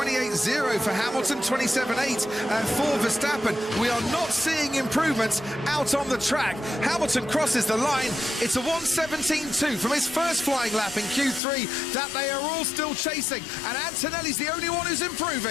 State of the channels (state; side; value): drops out; right; at 11.4 s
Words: for Hamilton, 27.8 for Verstappen. We are not seeing improvements out on the track. Hamilton crosses the line. It's a 1:17.2 from his first flying lap in Q3 that they are all still chasing, and Antonelli's the only one who's